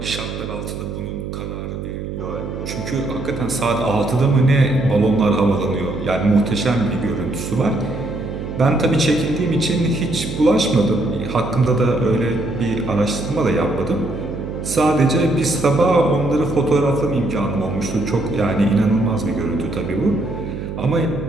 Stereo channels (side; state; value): right; noise; hum, 7 dB below the sound